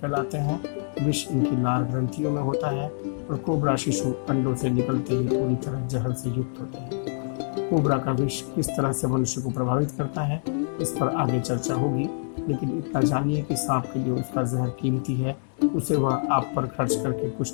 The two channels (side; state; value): right; silent; digital silence